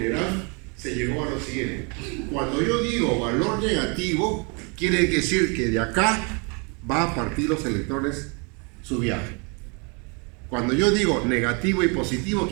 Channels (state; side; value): quieter; left; 33.7 dB